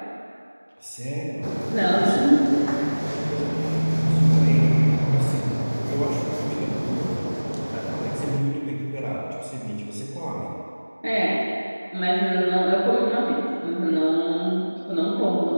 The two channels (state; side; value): inverted; both; correlation -1.00